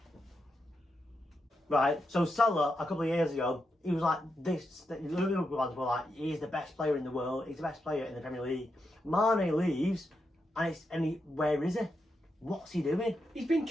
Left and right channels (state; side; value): normal; both; correlation 0.85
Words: Right, so Salah, a couple of years ago, he was like this. The Liverpool fans were like, he's the best player in the world. He's the best player in the Premier League. Mane leaves, and where is he? What's he doing? He's been